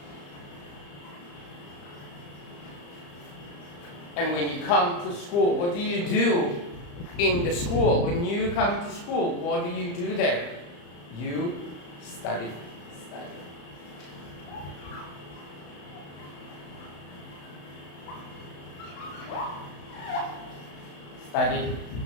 And when you come to school, what do you do in the school? When you come to school, what do you do there? You study. Study.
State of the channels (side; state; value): right; late; 35 ms